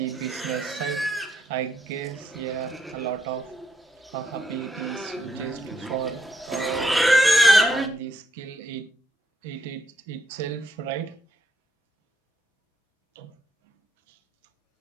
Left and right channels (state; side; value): normal; both; correlation 0.75